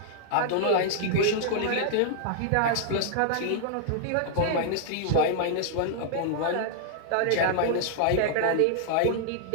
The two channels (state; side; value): different; both; correlation -0.01